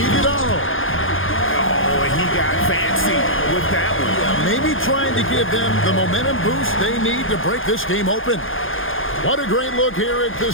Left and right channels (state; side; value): late; right; 0.59 ms